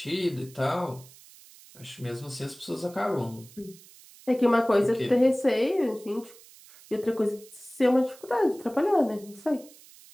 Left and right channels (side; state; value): right; noise; hiss, 22 dB below the sound